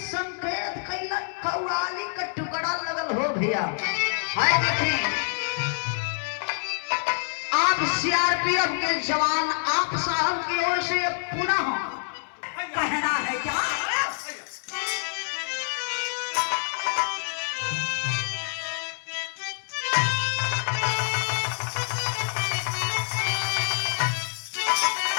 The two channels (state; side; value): silent; right; 60 dB below the other